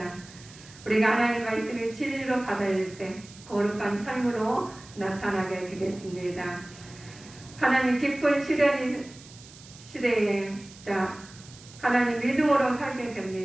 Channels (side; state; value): right; noise; hiss, 20 dB below the sound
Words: 우리가 하나님 말씀이 진리로 받아들일 때 거룩한 삶으로 나타나게 되겠습니다. 하나님 깊은 시대에 하나님 믿음으로 살게